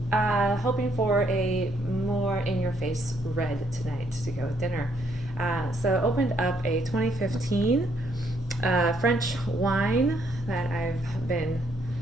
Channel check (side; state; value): both; normal; correlation 0.71